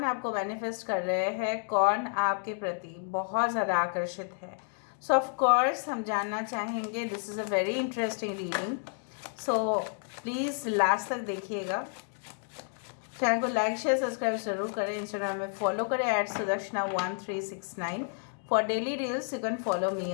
आपको मैनिफेस्ट कर रहे हैं, कौन आपके प्रति बहुत ज़्यादा आकर्षित है। सो ऑफ कोर्स हम जानना चाहेंगे। This is a very interesting reading, so please last तक देखिएगा। चैनल को लाइक शेयर सब्सक्राइब जरूर करें। इंस्टाग्राम में फॉलो करें @sudarshana1369। For daily reels you can follow me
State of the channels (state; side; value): silent; right; 57 dB below the other